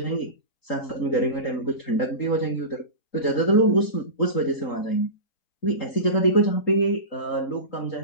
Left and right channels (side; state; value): right; late; 3.8 ms